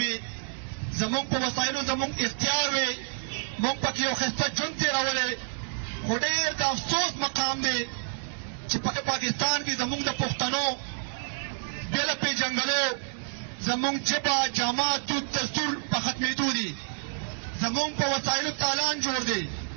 زمونږ په وسایلو زمونږ اختیار وي، مونږ پکې یو ښایسته ژوند تېرولی. خو ډېر د افسوس مقام دی چې په پاکستان کې زمونږ د پښتنو بې له پېژنګلو زمونږ ژبه جامه دود دستور په ختمېدو دي، زمونږ په وسایلو تالان جوړ دی.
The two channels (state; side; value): silent; left; digital silence